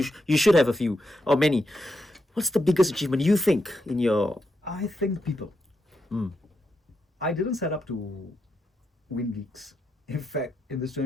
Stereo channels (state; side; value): normal; both; correlation 0.84